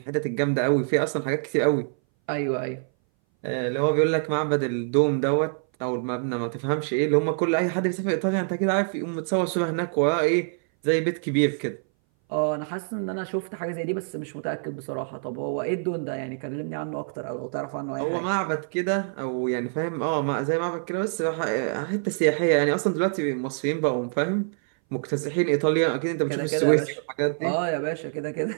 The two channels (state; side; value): silent; left; 59 dB below the other